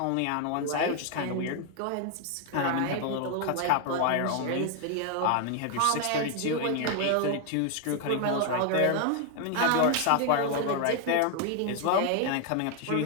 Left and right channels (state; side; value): different; both; correlation 0.00